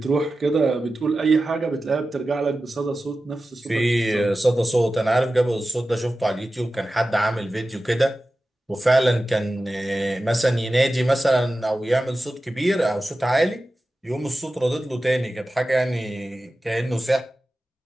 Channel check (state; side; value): normal; both; correlation 0.94